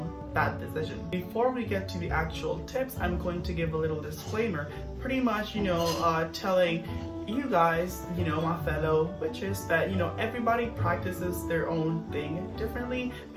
that decision. Before we get to the actual tips, I'm going to give a little disclaimer, pretty much, you know, telling you guys, you know, my fellow witches, that, you know, everybody practices their own thing differently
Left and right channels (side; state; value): both; identical; correlation 1.00